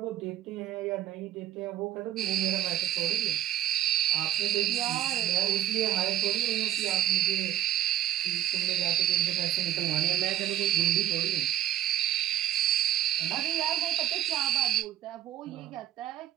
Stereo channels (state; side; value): quieter; left; 12.0 dB